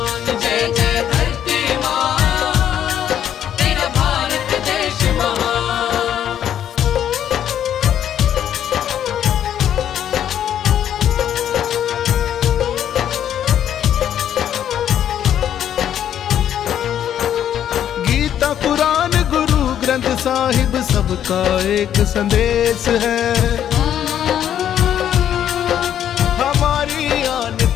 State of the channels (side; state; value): right; quieter; 10.1 dB